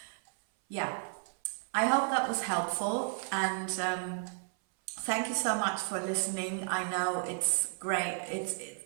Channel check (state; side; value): silent; left; 56 dB below the other